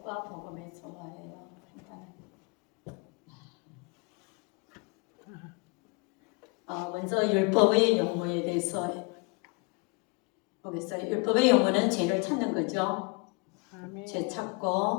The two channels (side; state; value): right; quieter; 30.9 dB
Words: 복음의 조화예요. 먼저 율법의 용어에 대해서 보겠어요. 율법의 용어는 죄를 찾는 거죠. 죄